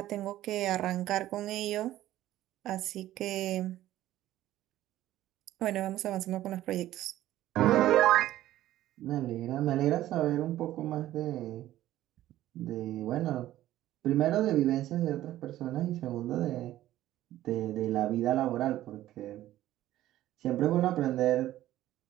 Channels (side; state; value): left; quieter; 14.2 dB